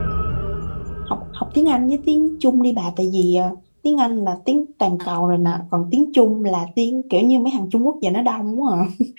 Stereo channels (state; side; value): inverted; both; correlation -1.00